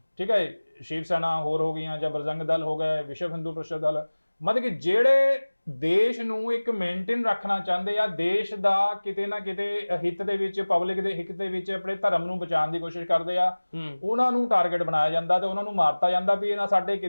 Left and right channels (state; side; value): inverted; both; correlation -1.00